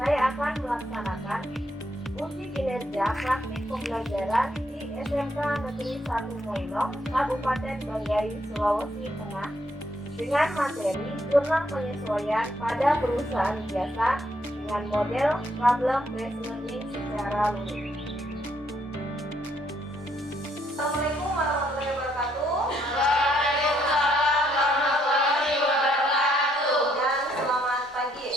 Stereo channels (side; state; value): both; normal; correlation 0.72